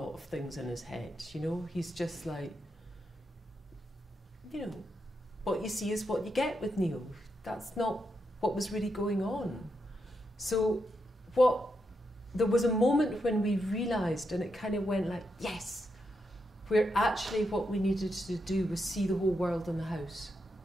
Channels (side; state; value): both; normal; correlation 0.83